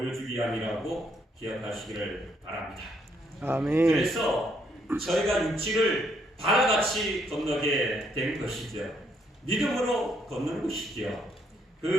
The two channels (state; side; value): normal; both; correlation 0.72